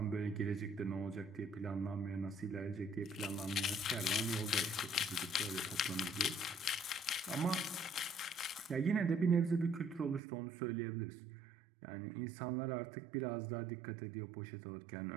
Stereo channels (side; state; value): left; drops out; at 10.2 s